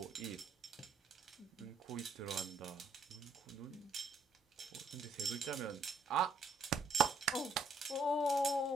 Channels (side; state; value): left; quieter; 3.3 dB